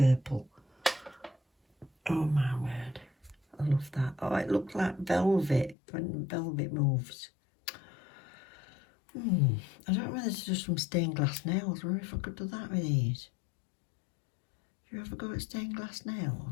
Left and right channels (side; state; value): right; drops out; at 5.8 s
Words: Oh my word. I love that. Oh, it looks like velvet when velvet moves. I don't know whether to do some stained glass nails or if I could do that with these. Do you ever go at stained glass